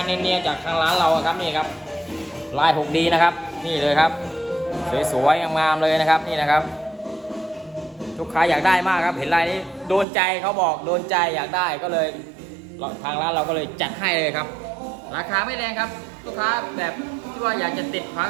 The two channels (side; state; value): left; drops out; at 10.1 s